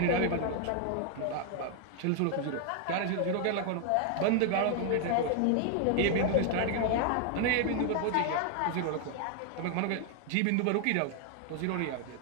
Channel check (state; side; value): different; both; correlation 0.00